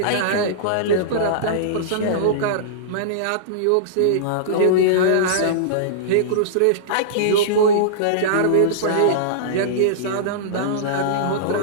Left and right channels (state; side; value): different; both; correlation -0.03